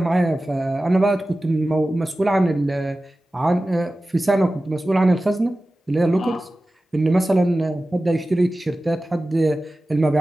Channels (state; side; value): normal; both; correlation 0.96